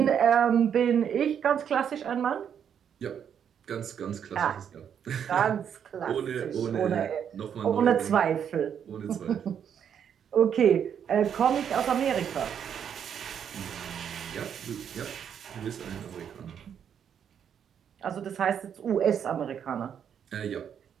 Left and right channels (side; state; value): left; quieter; 8.3 dB